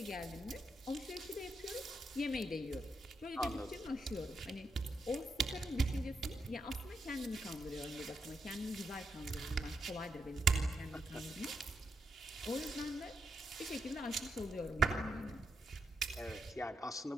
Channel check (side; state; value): both; normal; correlation 0.82